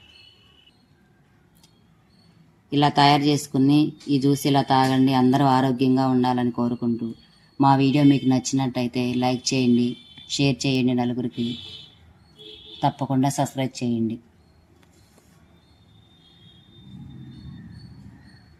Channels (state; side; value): identical; both; correlation 1.00